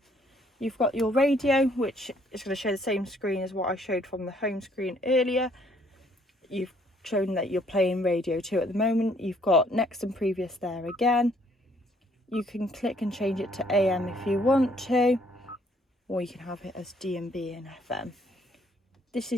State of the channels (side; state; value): both; normal; correlation 0.65